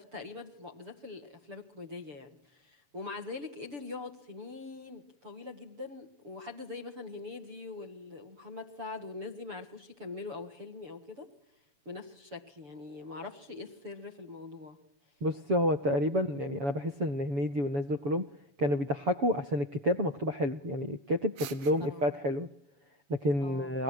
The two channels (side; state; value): left; late; 7.4 ms